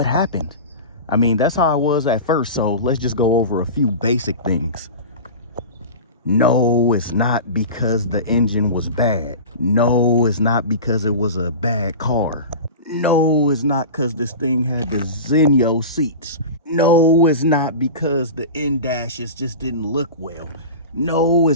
happened. I mean, that's how I was at first, so let's just go over a few basic things. No, it's not because the engine was bad. No, it's not because it was a bad car. No, it's not because this thing had the Zenio seats. No, it's not because the in-dashes just didn't look well. No,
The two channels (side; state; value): both; inverted; correlation -0.31